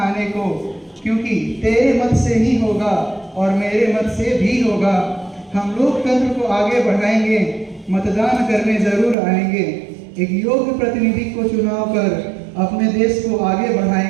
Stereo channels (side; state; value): left; drops out; at 9.2 s